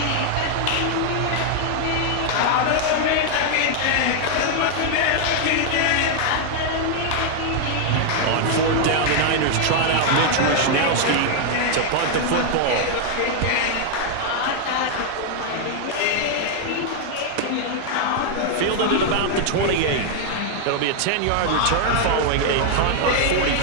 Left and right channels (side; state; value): both; different; correlation 0.00